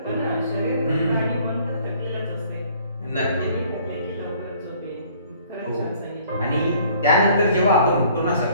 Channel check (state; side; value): inverted; both; correlation -0.57